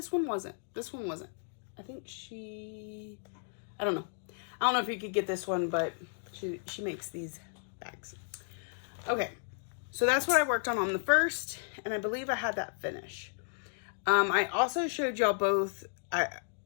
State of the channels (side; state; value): right; silent; digital silence